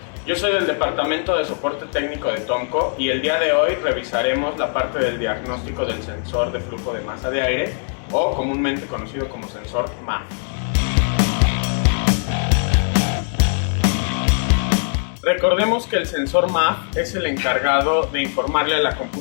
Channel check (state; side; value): silent; right; 56 dB below the other